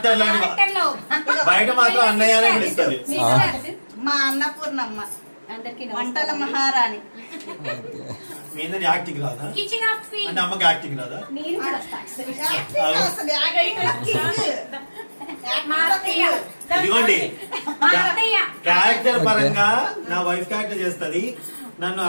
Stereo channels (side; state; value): both; inverted; correlation -1.00